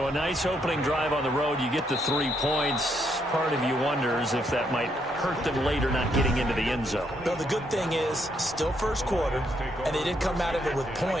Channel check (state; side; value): normal; both; correlation 0.74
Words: a nice opening drive on the road. You get the 3 points. Part of you wonders if that might hurt them later not getting into the end zone. Well, the good thing is, still first quarter, and they did come out of it with